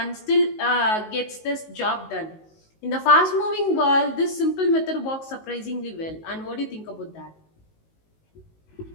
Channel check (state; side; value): late; right; 19 ms